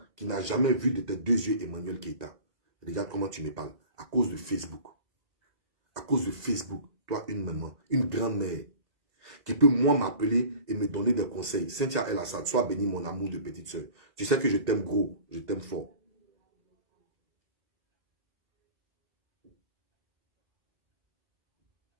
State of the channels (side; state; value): left; late; 2.0 ms